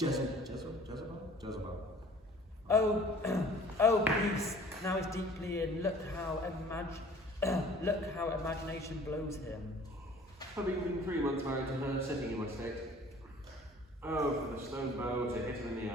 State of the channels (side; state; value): both; normal; correlation 0.50